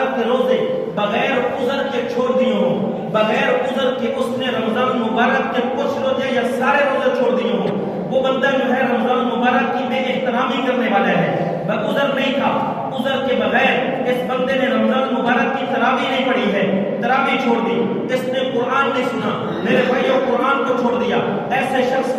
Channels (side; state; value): both; identical; correlation 1.00